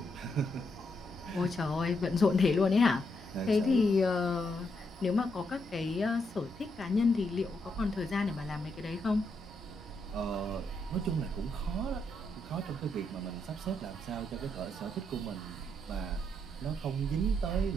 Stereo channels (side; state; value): both; normal; correlation 0.79